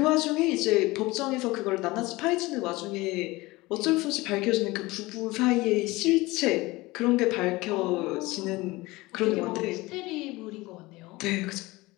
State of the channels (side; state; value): right; quieter; 21.1 dB